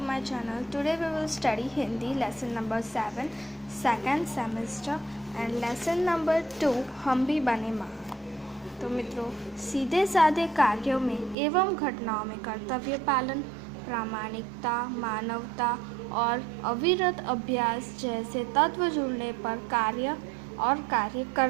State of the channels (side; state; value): left; drops out; at 11.4 s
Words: my channel. Today we will study Hindi lesson number 7 second semester and lesson number 2 हम भी बने महान। तो मित्रों, सीधे साधे कार्यों में एवं घटनाओं में कर्तव्य पालन, प्रामाणिकता, मानवता और अविरत अभ्यास जैसे तत्व जुड़ने पर कार्य